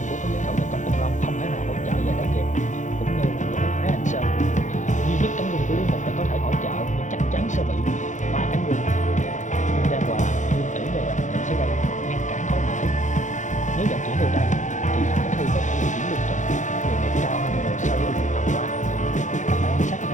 của các hậu Công Tôn Long không thể nào hỗ trợ về để kịp, cũng như là với Thái Hành Sơn. Duy nhất cánh quân của Lý Mục là có thể hỗ trợ, nhưng chắc chắn sẽ bị ba cánh quân Lương Đan Hòa, Lương Tỷ về bạn sẽ gây ngăn cản khó dễ. Nếu vận chuyển từ đây thì khả thi có thể di chuyển lương thực đường nghiệp cao hơn nhiều so với đường tàu qua. Các bạn quan sát có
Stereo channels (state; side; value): late; right; 0.36 ms